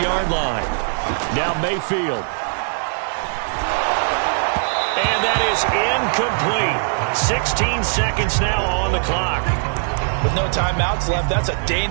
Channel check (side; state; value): left; silent; 66 dB below the other